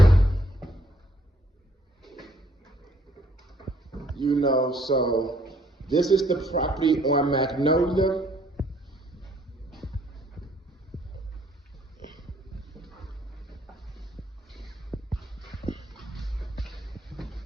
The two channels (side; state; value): both; normal; correlation 0.65